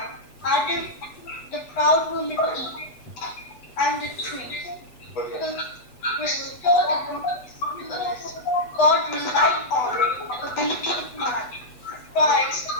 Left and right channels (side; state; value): right; late; 8.1 ms